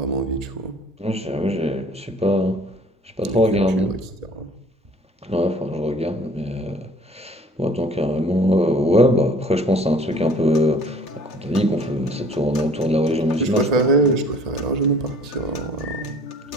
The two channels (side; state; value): both; normal; correlation 0.52